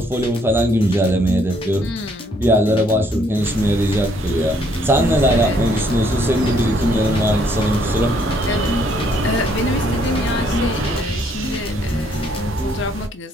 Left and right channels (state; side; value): normal; both; correlation 0.67